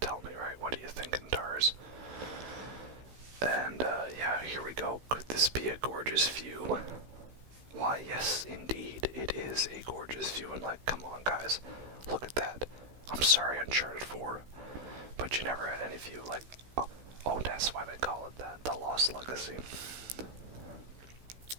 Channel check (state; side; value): late; left; 16 ms